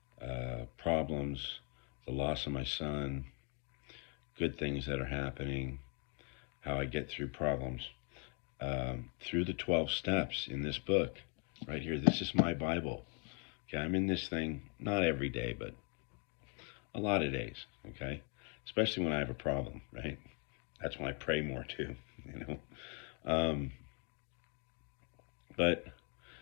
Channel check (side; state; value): right; quieter; 37.0 dB